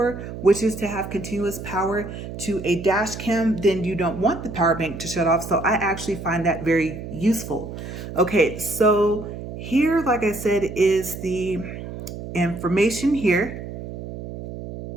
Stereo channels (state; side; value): noise; right; hum, 9 dB below the sound